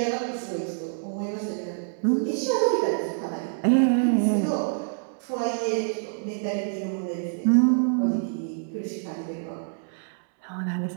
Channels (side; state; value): left; silent; 61 dB below the other